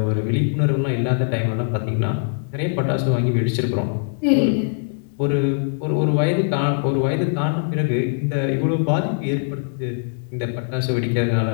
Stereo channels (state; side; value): silent; right; digital silence